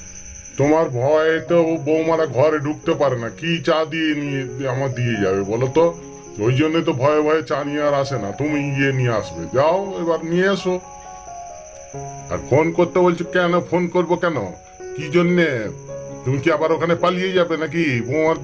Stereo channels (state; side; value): identical; both; correlation 1.00